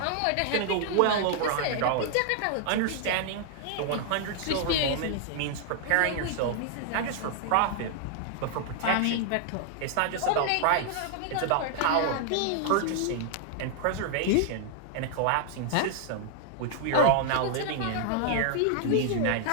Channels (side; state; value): both; different; correlation -0.01